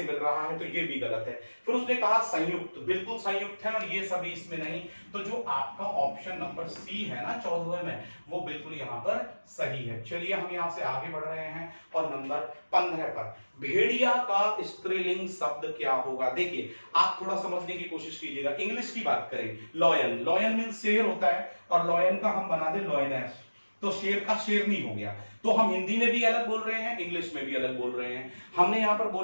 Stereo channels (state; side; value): inverted; both; correlation -1.00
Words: मिल रहा है, तो ये भी गलत है। फिर उसने कहा संयुक्त, बिल्कुल संयुक्त है और ये सभी इसमें नहीं। तो जो आपका ऑप्शन नंबर सी है ना 14वें में, वो बिल्कुल यहां पर सही है। चलिए हम यहां से आगे बढ़ रहे हैं और नंबर 15 पर, भेड़िया का स्त्रीलिंग शब्द क्या होगा? देखिए आप थोड़ा समझने की कोशिश कीजिएगा। इंग्लिश की बात करें, लॉयन, लॉयन मीन्स शेर होता है और लॉयन का हम बना दे लॉयनेस, तो शेर का शेरनी हो गया। तो हम हिंदी में भी अलग बोल रहे हैं, इंग्लिश में भी अलग बोल रहे हैं। हमने यहां पर